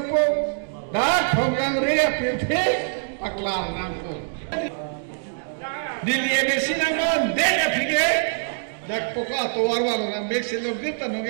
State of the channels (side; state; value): left; silent; digital silence